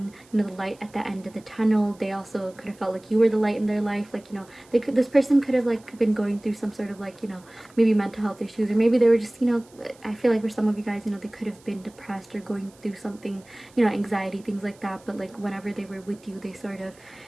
you know, the light at the end of the tunnel. They also could have felt like you were the light in their life. Like, you know, this person could have like been going through some sort of like, you know, maybe mental health issues, or maybe they were just, you know, I feel like for some of you guys, you know, they could have been depressed or going through something, you know, anxiety, things like that. But like whenever they were with you, they sort of,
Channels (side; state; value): right; noise; hiss, 27 dB below the sound